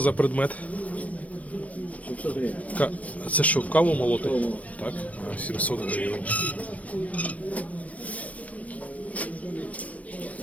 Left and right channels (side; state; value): right; late; 0.069 ms